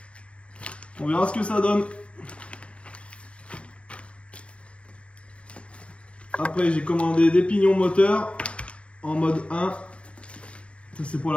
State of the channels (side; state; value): right; late; 0.061 ms